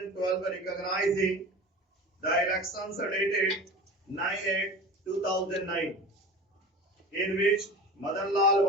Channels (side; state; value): both; normal; correlation 0.34